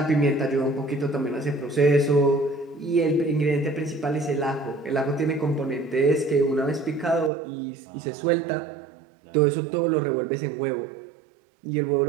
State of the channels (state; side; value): drops out; left; at 7.3 s